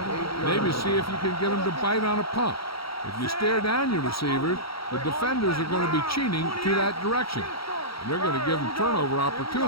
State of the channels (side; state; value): right; late; 0.75 ms